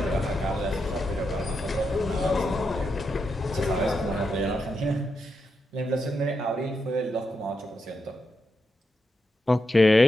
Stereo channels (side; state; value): both; normal; correlation 0.85